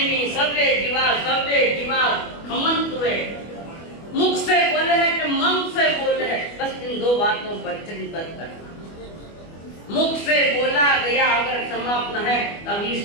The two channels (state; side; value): late; right; 25 ms